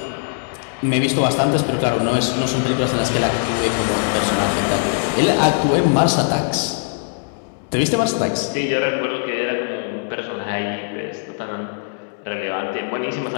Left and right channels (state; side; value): silent; right; 65 dB below the other